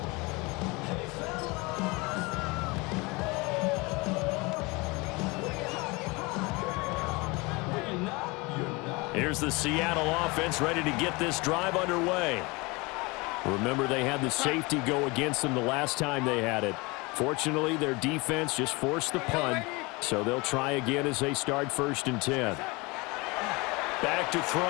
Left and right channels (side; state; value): right; quieter; 25.6 dB